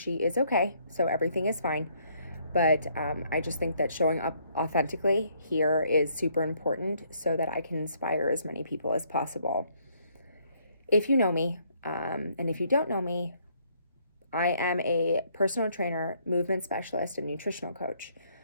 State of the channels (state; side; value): inverted; both; correlation -0.68